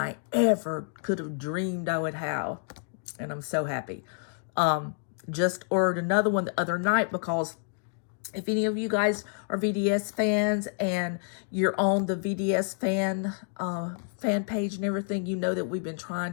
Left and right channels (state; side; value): silent; right; digital silence